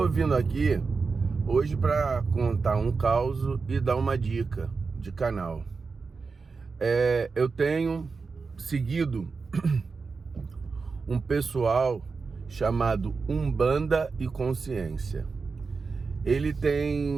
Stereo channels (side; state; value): left; quieter; 4.6 dB